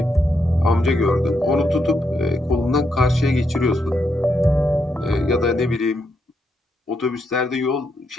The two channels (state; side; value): normal; both; correlation 0.80